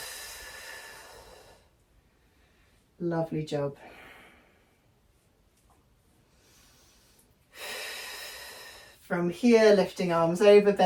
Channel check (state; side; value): identical; both; correlation 1.00